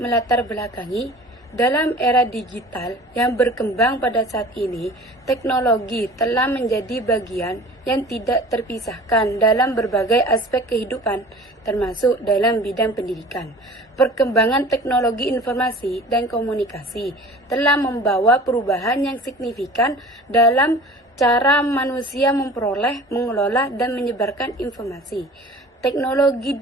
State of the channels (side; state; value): both; normal; correlation 0.43